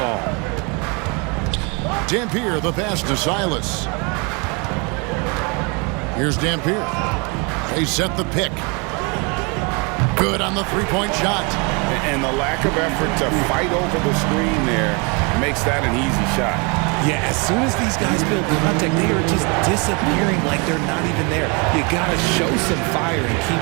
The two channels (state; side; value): quieter; left; 31.6 dB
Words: Dampier, the pass to Silas. Here's Dampier. They set the pick. Good on the three-point shot. And the lack of effort to fight over the screen there makes that an easy shot. Yeah, as soon as these guys build contact, they are just disappearing like they're not even there. You got to show some fire and keep